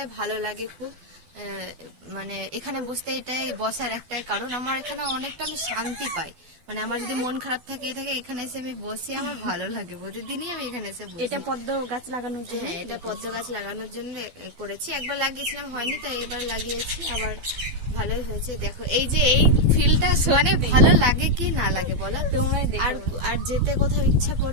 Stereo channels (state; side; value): late; left; 12 ms